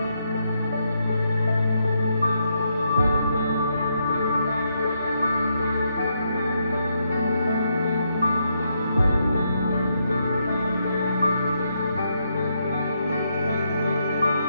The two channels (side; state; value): both; inverted; correlation -0.79